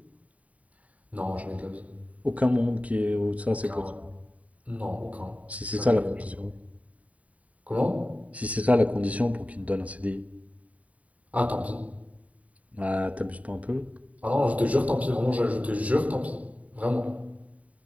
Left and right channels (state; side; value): late; left; 0.069 ms